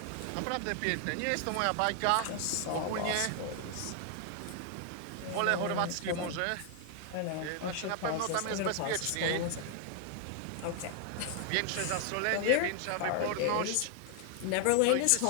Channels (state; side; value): different; both; correlation 0.00